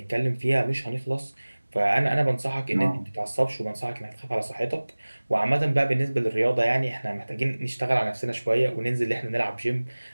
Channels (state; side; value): inverted; both; correlation -1.00